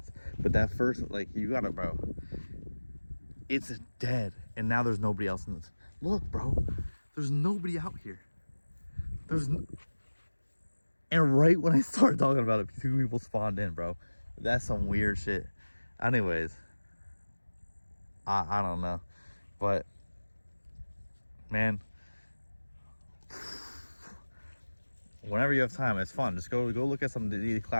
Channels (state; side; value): inverted; both; correlation -1.00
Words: But that first, like, you gotta, bro, it's dead. And now there's nobody else in this. Look, bro, there's nobody out here. And right when I started talking about it, 2 people spawned in, bro. That's some weird shit. Anyways, I don't know. But, man, whenever you have time, it's fun. Just go look at some